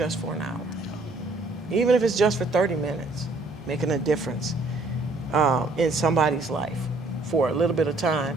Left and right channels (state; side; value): quieter; left; 3.1 dB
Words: for an hour. Even if it's just for 30 minutes, making a difference in somebody's life for a little bit of